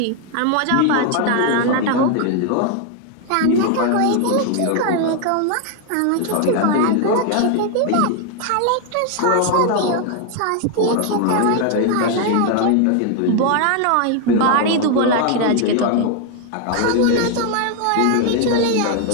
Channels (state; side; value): different; both; correlation 0.01